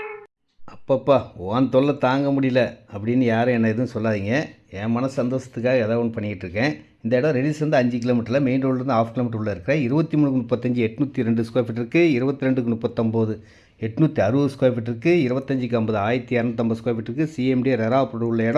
அப்பப்பா உன் தொல்லை தாங்க முடியல அப்படின்னு யாரும் என்ன எதுவும் சொல்லாதீங்க. என் மன சந்தோஷத்துக்காக ஏதாவது ஒன்று பண்ணிக்கிட்டு இருக்கேன். இந்த இடம் ரெடில்ஸ் 5 கிலோமீட்டரில், மெயின் ரோட்லேருந்து 1/2 கிலோமீட்டர் உள்ள இருக்கிற 23-35 802 ஸ்கொயர் ஃபீட் இருக்குது. 22-39 860 ஸ்கொயர் ஃபீட் இருக்குது. 25-50 1250 ஸ்கொயர் ஃபீட் இருக்குது. சிஎம்டி ரெரா அப்ரூவ்ட் உள்ள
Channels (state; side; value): identical; both; correlation 1.00